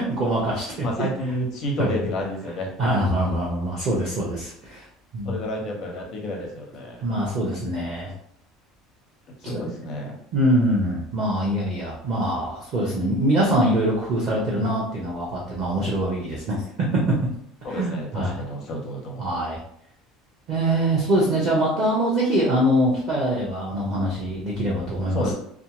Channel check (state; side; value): normal; both; correlation 0.42